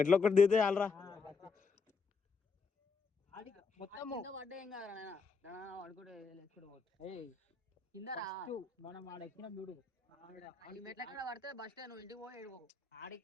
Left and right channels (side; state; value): right; quieter; 4.9 dB